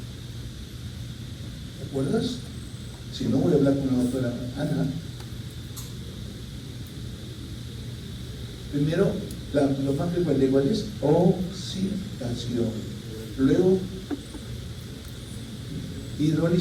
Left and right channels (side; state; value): both; identical; correlation 1.00